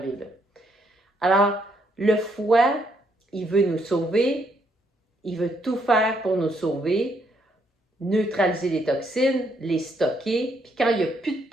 Là. Alors, le foie, il veut nous sauver, il veut tout faire pour nous sauver, neutraliser les toxines, les stocker, puis quand il n'y a plus de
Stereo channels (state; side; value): normal; both; correlation 0.73